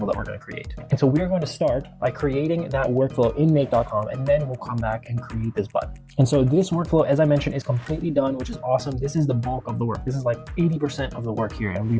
that we're going to create. And so we're going to start by creating that workflow in make.com, and then we'll come back and create this button. And so this workflow, as I mentioned, is completely done, which is awesome. This is the bulk of the work. This is like 80% of the work here, and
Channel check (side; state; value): both; identical; correlation 1.00